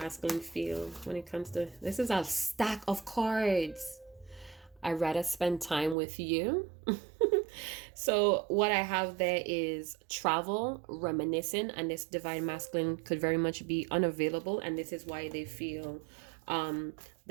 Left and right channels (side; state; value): left; drops out; at 6.0 s